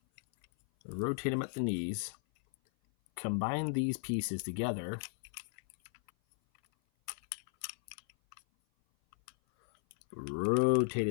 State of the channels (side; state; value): right; silent; 54 dB below the other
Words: Rotate them at the knees. Combine these pieces together. Rotate